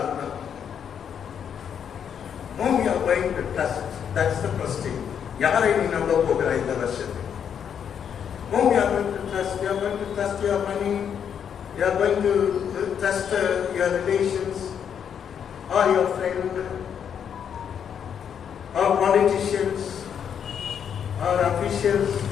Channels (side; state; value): right; quieter; 8.1 dB